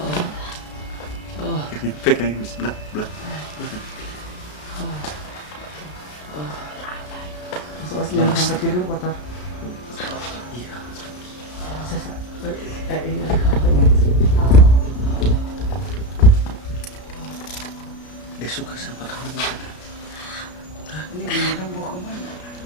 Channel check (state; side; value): late; right; 33 ms